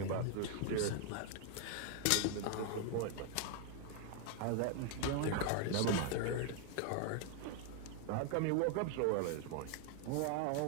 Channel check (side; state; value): both; different; correlation 0.00